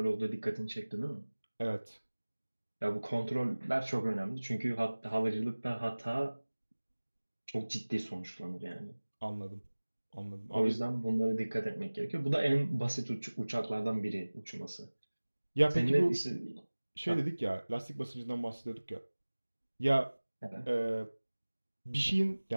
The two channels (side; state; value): both; inverted; correlation -1.00